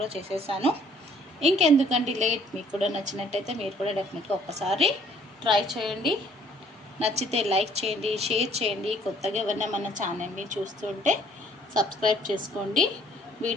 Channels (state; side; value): normal; both; correlation 0.60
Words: చేసేసాను. ఇంకెందుకండి లేట్. మీకు కూడా నచ్చినట్టయితే మీరు కూడా డెఫినెట్గా ఒక్కసారి ట్రై చేయండి. నచ్చితే లైక్ చేయండి, షేర్ చేయండి. కొత్తగా ఎవరైనా మన ఛానల్ని చూస్తుంటే సబ్స్క్రైబ్ చేసుకోండి.